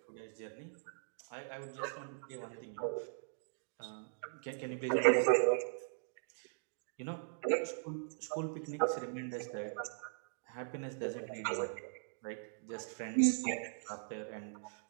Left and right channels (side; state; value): left; silent; digital silence